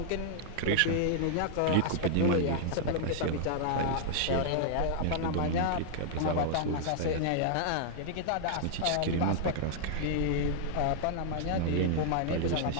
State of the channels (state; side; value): different; both; correlation -0.01